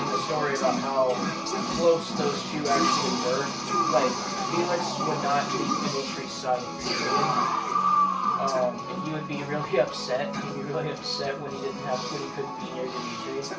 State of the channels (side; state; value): both; identical; correlation 1.00